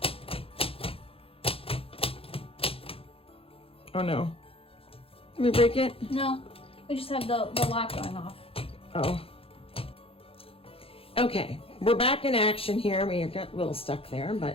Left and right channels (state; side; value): late; right; 0.27 ms